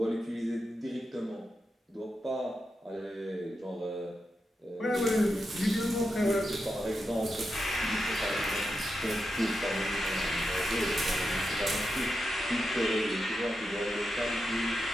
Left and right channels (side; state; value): both; normal; correlation 0.87